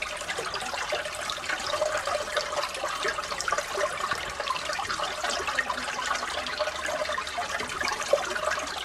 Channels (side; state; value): both; identical; correlation 1.00